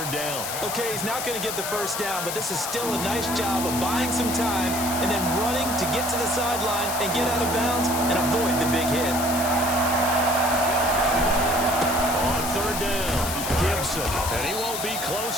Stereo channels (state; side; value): noise; left; hiss, 5 dB below the sound